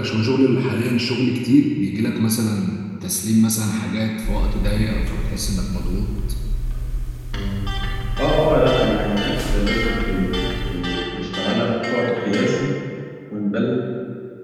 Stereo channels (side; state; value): both; identical; correlation 1.00